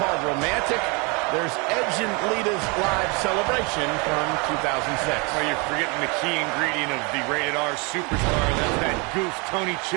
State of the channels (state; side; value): quieter; left; 30.2 dB